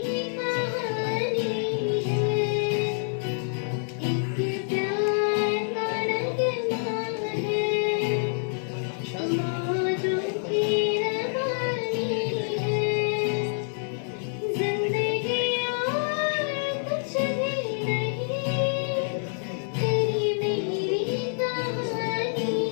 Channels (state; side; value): silent; right; digital silence